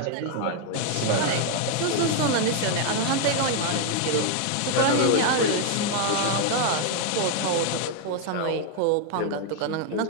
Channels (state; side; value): different; both; correlation 0.01